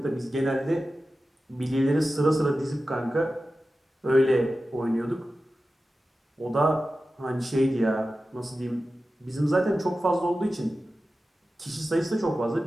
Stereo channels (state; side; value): normal; both; correlation 0.94